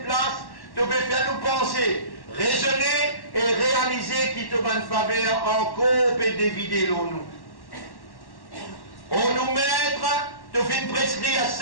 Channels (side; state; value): right; late; 1.1 ms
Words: place, tu peux faire nous penser, raisonner et réaliser qui te va une faveur en coupe et dévider l'eau nous. On nous mettre, tu fais une prescrire